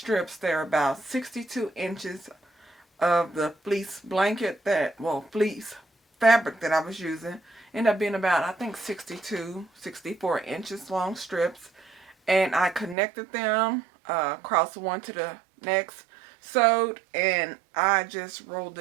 They're about 62 inches of the fleece blanket fleece fabric that I was using. Ended up being about, I think, 62, 64 inches long strips. And I connected them across one to the next, sewed, and I just rolled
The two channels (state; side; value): drops out; left; at 13.0 s